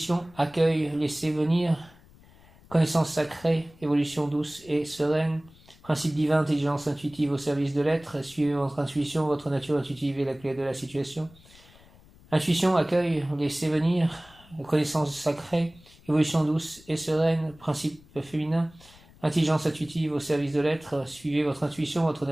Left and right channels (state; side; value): noise; left; rumble, 25 dB below the sound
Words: accueil, laisser venir, connaissance sacrée, évolution douce et sereine, principe divin, intelligence intuitive au service de l'être, suivez votre intuition, votre nature intuitive est la clé de la situation. Intuition, accueil, laisser venir, connaissance sacrée, évolution douce et sereine, principe féminin, intelligence intuitive au service de l'être, suivez votre intuition, votre